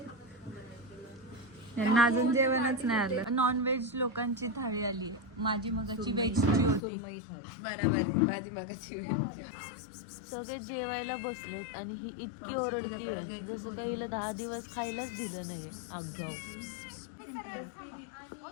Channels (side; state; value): right; drops out; at 6.8 s